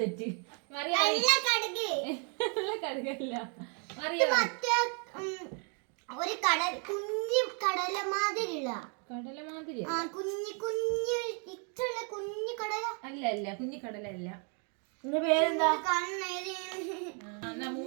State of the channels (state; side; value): quieter; left; 39.4 dB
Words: മറിയാ കടുക് കടുകല്ല മറിയാ മറ്റേ ഒരു കടൽ കുഞ്ഞു കടല മാതിരിയുള്ള കടല മാതിരി ആ കുഞ്ഞു ഇത്രയുള്ള കുഞ്ഞു കടല അല്ല അല്ല കുഞ്ഞിക്കടല അല്ല എന്റെ പേരെന്താ കണ്ണേരി എന്നാ